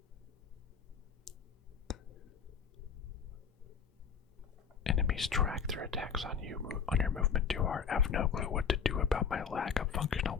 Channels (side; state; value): right; quieter; 6.6 dB